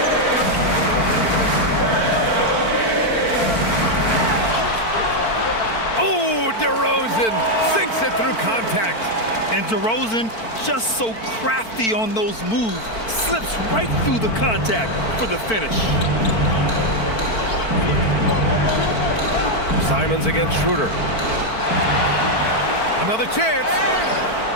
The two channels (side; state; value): right; late; 4.5 ms